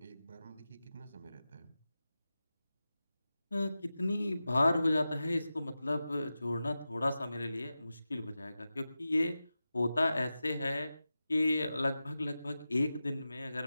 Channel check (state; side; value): inverted; both; correlation -0.93